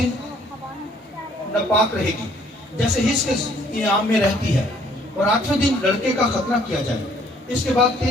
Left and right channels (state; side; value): normal; both; correlation 0.62